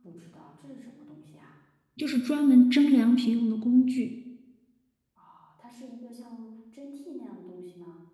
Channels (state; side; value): identical; both; correlation 1.00